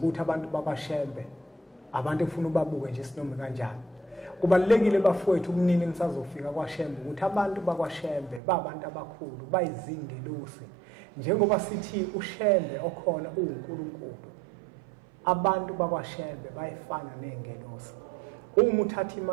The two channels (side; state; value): left; drops out; at 8.4 s